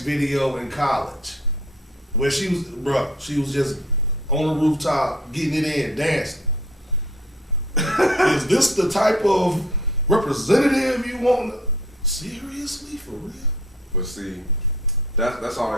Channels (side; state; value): both; normal; correlation 0.54